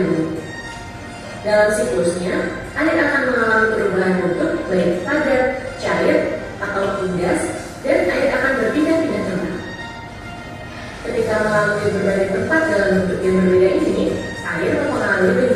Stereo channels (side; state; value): both; identical; correlation 1.00